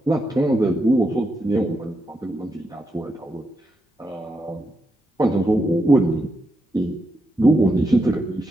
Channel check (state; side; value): normal; both; correlation 0.83